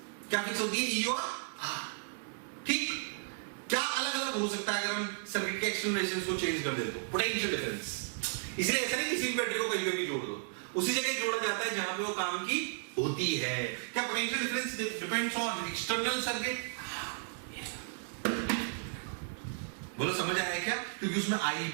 क्या फिक्स होती है? E और R। ठीक, क्या अलग अलग हो सकता है अगर हम सर्किट के एक्सटर्नल रेजिस्टेंस को चेंज कर दे तो? Potential difference. इसलिए ऐसा नहीं किसी भी बैटरी को कहीं पे भी जोड़ दो, उसी जगह जोड़ा जाता है जहां पे वो काम की होती है। क्या potential difference depends on external circuit? बोलो समझ आया क्या? क्योंकि उसमें I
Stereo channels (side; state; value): left; silent; 55 dB below the other